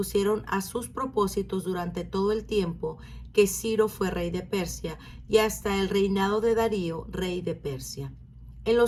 a sus propósitos durante todo el tiempo que Ciro fue rey de Persia y hasta el reinado de Darío, rey de Persia. En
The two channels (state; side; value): identical; both; correlation 1.00